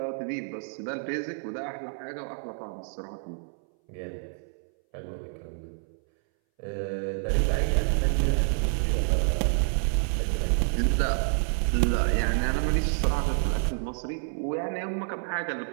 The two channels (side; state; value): left; silent; 59 dB below the other